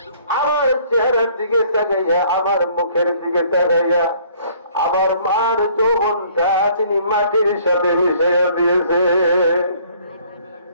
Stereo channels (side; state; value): both; inverted; correlation -0.58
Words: আমার চেহারার দিকে তাকাইয়া, আমার মুখের দিকে তাকাইয়া, আমার মার যৌবনটা তিনি মাটির সাথে মিশাইয়া দিয়েছে।